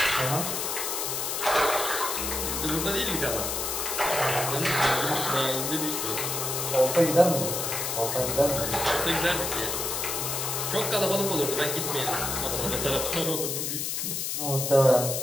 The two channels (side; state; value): left; noise; hiss, 2 dB below the sound